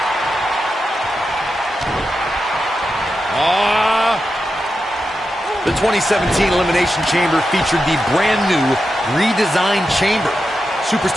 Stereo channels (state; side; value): normal; both; correlation 0.89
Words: The 2017 Elimination Chamber featured the brand new redesigned chamber.